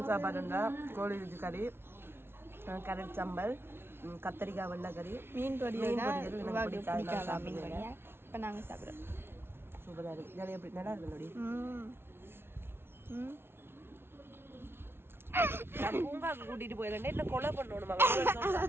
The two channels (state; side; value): late; left; 0.11 ms